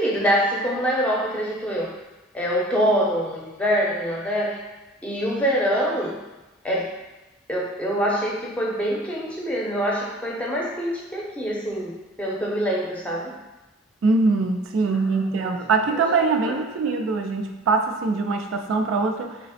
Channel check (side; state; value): both; normal; correlation 0.45